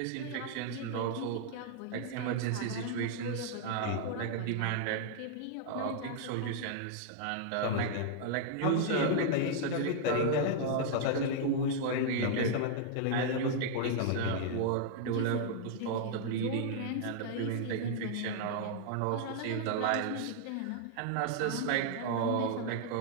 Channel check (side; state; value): both; different; correlation -0.01